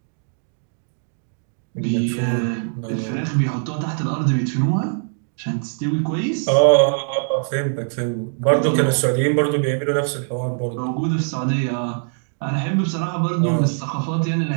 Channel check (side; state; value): left; silent; digital silence